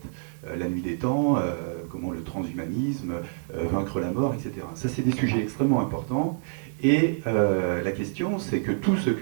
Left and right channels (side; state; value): left; silent; digital silence